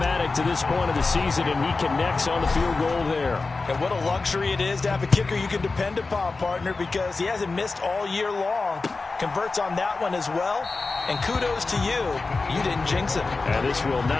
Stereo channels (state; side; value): quieter; right; 3.9 dB